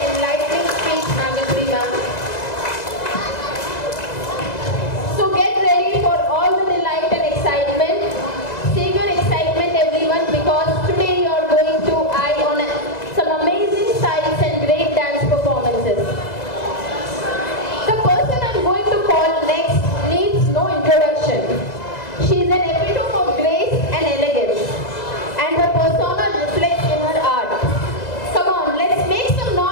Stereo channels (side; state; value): right; late; 2.0 ms